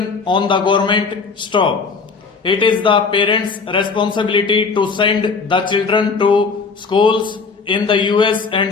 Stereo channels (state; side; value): quieter; right; 4.8 dB